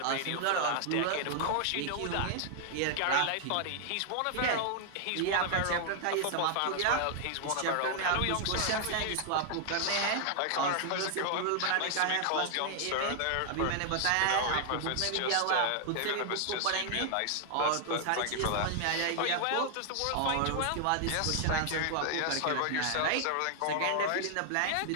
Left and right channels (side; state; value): both; different; correlation 0.00